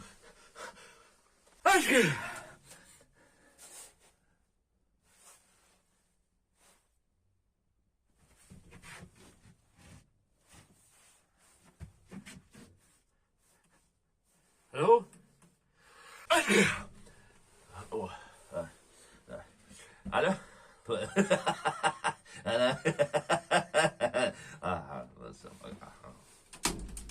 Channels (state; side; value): identical; both; correlation 1.00